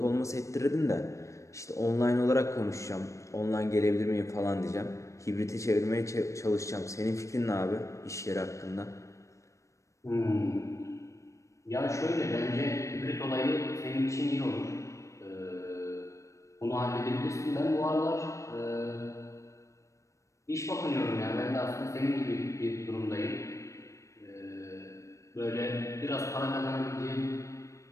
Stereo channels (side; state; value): right; late; 0.15 ms